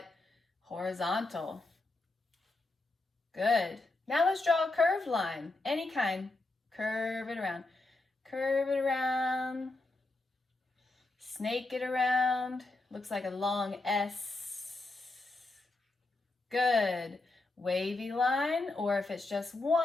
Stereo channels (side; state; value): right; quieter; 3.1 dB